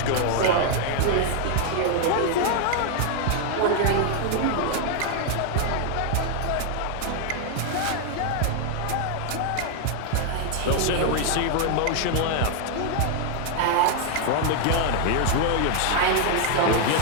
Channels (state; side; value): different; both; correlation 0.00